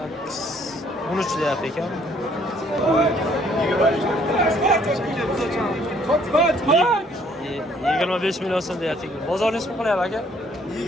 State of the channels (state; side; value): normal; both; correlation 0.63